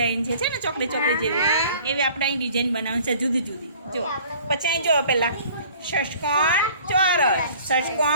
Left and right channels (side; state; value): both; inverted; correlation -0.50